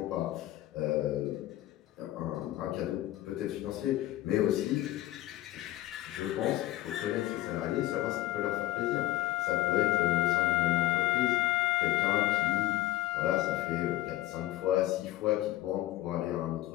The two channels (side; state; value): right; quieter; 15.2 dB